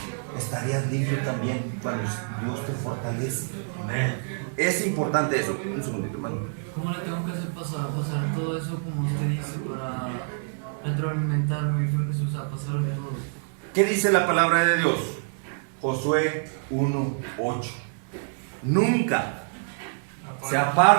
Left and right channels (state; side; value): silent; left; 59 dB below the other